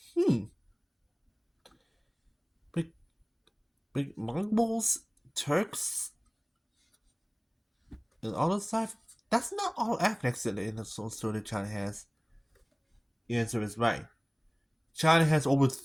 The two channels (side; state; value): both; identical; correlation 1.00